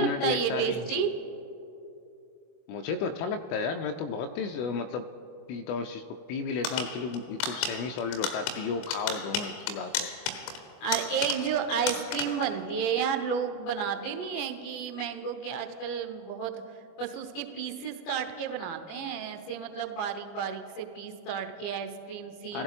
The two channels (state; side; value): late; right; 24 ms